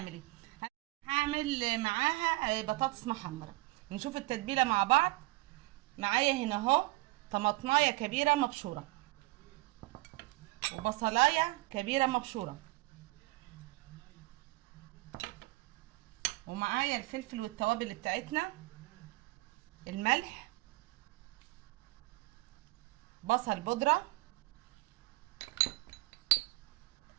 هعمل معاها بطاطس محمره. نشوف التتبيله مع بعض. معايا هنا اهو طماطمايه كبيره مبشوره وبصلايه كبيره مبشوره، ومعايا الفلفل والتوابل بتاعتنا، الملح، بصل بودرة،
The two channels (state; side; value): quieter; left; 21.8 dB